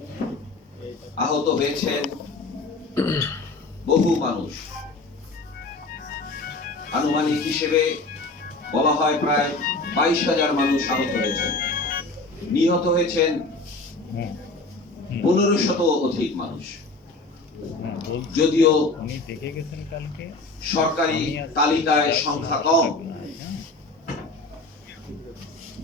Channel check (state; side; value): quieter; right; 3.2 dB